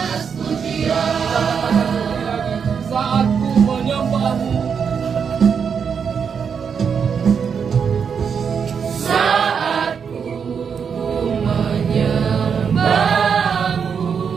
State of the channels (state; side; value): quieter; left; 6.7 dB